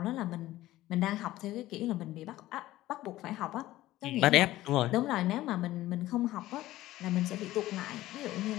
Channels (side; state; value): right; quieter; 15.9 dB